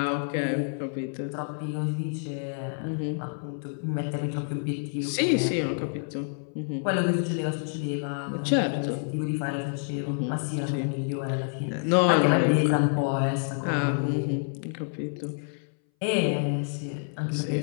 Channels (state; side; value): silent; right; 59 dB below the other